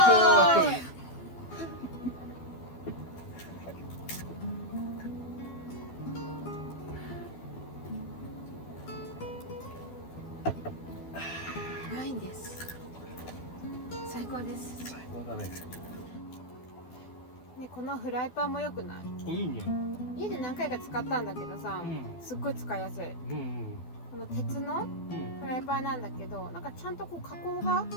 イ。ワインです。最高です。最高だね。ね、このフライパンも良くない？いいね。家で何回か使ったんだけどさ、すっごい使いやすい。この鉄のフライパンなんだけど、なんかちゃんとこう加工が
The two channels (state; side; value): late; right; 12 ms